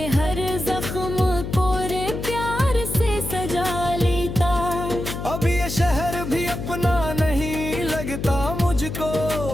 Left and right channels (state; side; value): noise; left; hum, 6 dB below the sound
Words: हर जख्म पूरे प्यार से सजा लेता। अब ये शहर भी अपना नहीं लगता मुझको,